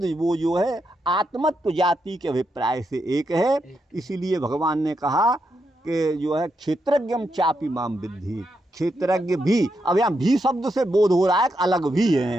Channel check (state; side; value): normal; both; correlation 0.83